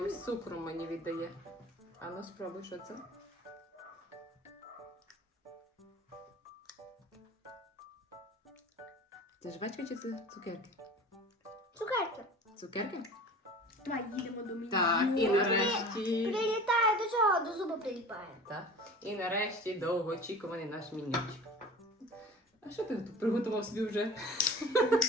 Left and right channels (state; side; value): normal; both; correlation 0.40